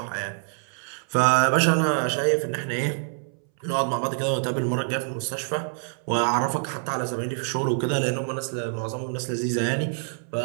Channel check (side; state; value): left; silent; 61 dB below the other